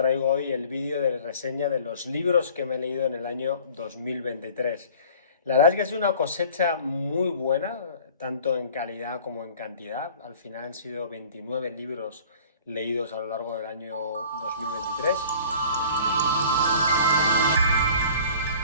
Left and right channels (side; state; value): both; inverted; correlation -0.48